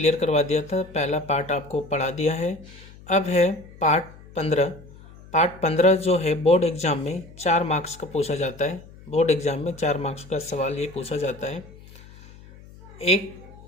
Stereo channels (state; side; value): noise; left; hum, 21 dB below the sound